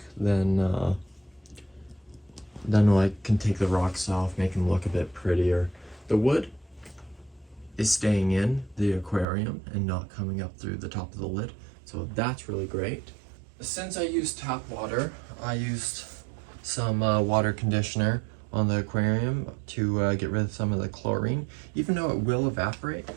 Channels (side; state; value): left; drops out; at 9.2 s